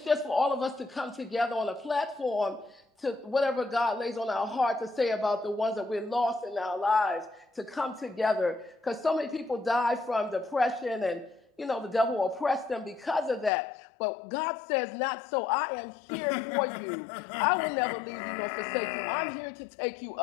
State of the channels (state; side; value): drops out; right; at 13.5 s